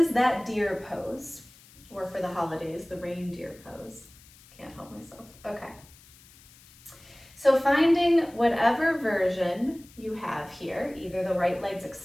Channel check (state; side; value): noise; left; hiss, 24 dB below the sound